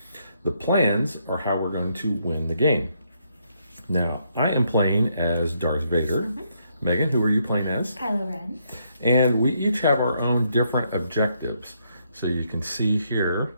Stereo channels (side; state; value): both; inverted; correlation -0.74